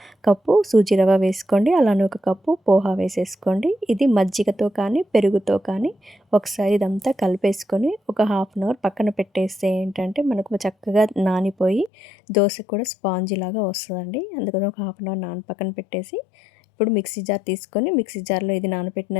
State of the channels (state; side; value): drops out; right; at 11.9 s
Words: కప్పు సూజీ రవ్వ వేసుకోండి. అలానే ఒక కప్పు పోహా వేసేసుకోండి. ఇది మజ్జిగతో కానీ పెరుగుతో కానీ ఒకసారి ఇదంతా కలిపేసుకొని ఒక హాఫ్ అన్ అవర్ పక్కన పెట్టేస్తే ఏంటంటే మనకు చక్కగా నానిపోయి దోశ కూడా స్పాంజీ లాగా వస్తుందండి. అందుకని ఒక హాఫ్ అన్ అవర్ పక్కన పెట్టేసి ఇప్పుడు మిక్సీ జార్ తీసుకొని మిక్సీ జార్లో ఇది